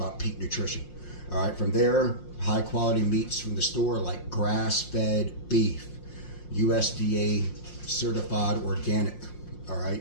peak nutrition. All right, from there, high quality meats from the store like grass-fed beef, USDA certified organic, all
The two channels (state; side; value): late; right; 5.6 ms